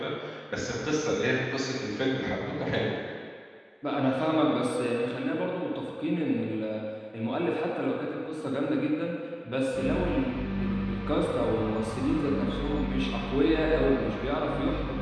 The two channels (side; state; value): both; identical; correlation 1.00